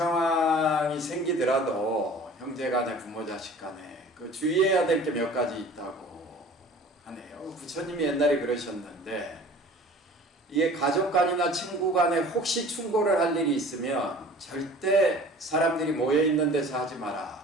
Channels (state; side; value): normal; both; correlation 0.45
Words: 생기더라도 형제간에 부모 자식간에 주의해야 될 게 몇 가지 있다고 하네요. 부처님이 옛날에 그러셨는데 이게 가족 간이나 친구 간에 혹시 충고를 할 일이 있으면 절대 사람들이 모여 있는 데서 하지